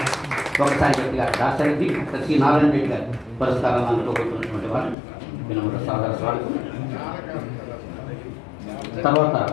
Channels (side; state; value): right; drops out; at 5.0 s